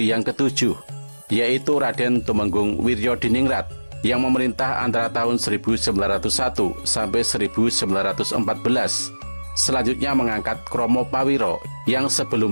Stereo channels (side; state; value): both; inverted; correlation -1.00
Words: yang ketujuh, yaitu Raden Tumenggung Wiryodiningrat, yang memerintah antara tahun 1901 sampai 1914, selanjutnya mengangkat Kromo Pawiro yang